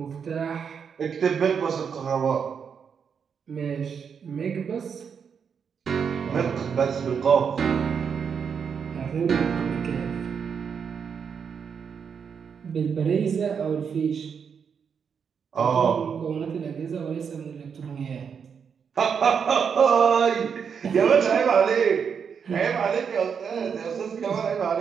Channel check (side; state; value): left; quieter; 6.8 dB